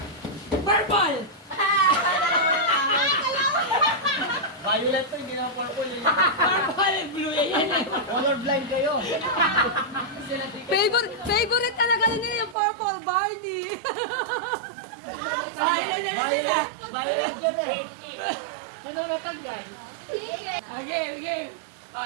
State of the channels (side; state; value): left; drops out; at 12.6 s